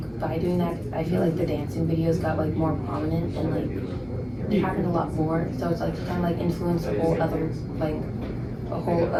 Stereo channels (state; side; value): identical; both; correlation 1.00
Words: by doing that I feel like the dancing videos got like more prominent and like it happened a lot more, so it's like kind of like influenced like a whole